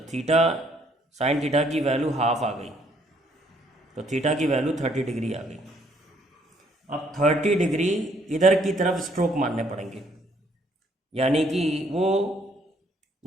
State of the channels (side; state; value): both; normal; correlation 0.66